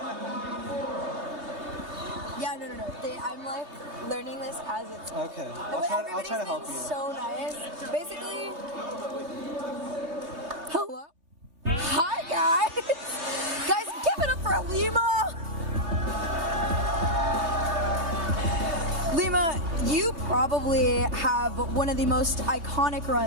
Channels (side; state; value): left; late; 3.5 ms